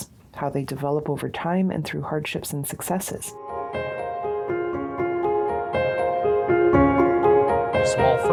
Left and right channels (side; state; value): both; identical; correlation 1.00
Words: how they develop over time and through hardships and successes. Small